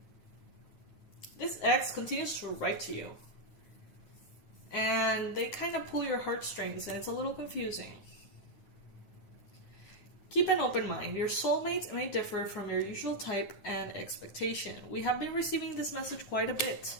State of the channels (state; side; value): late; right; 9.5 ms